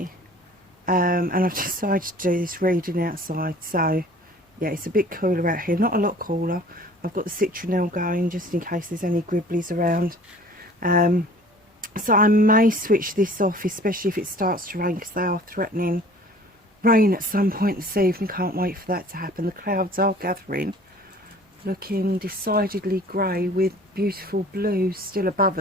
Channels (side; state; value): both; normal; correlation 0.49